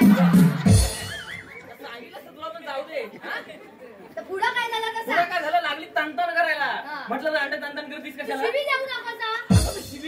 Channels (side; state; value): both; identical; correlation 1.00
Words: सांगितलं तर तुला पण जाऊ दे. हा? तर पुढं काय झालं पुढं कसं? काय झालं? लागली तणतण करायला. हा. म्हटलं रांडा तणतण करतीस कशाला? शिवी देऊ नका जा. आता तू